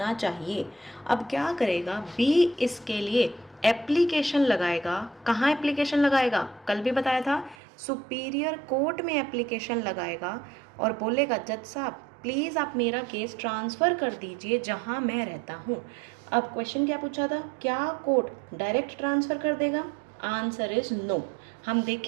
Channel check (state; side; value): drops out; left; at 7.6 s